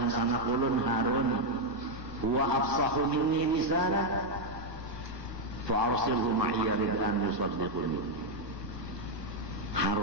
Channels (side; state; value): left; late; 1.4 ms